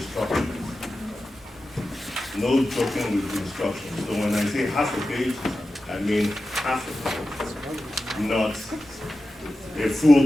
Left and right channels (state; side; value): normal; both; correlation 0.93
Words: No joking with instructions. So when I say half a page, I mean half a page, not a